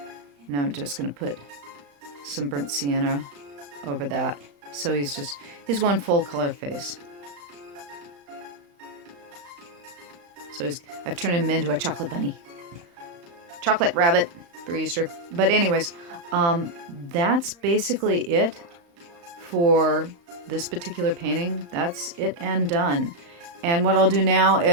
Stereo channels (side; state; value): left; late; 35 ms